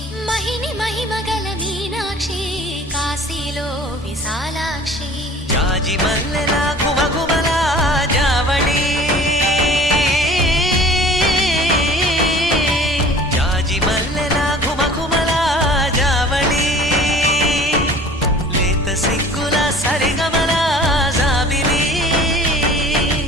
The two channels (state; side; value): normal; both; correlation 0.45